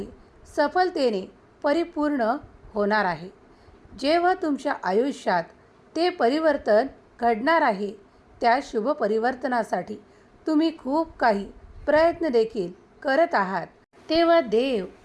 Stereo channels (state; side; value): identical; both; correlation 1.00